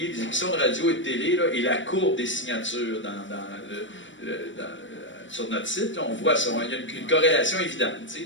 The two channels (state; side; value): late; right; 0.55 ms